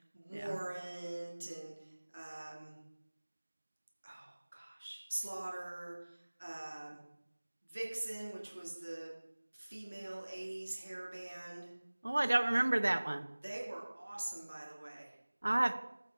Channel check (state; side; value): inverted; both; correlation -1.00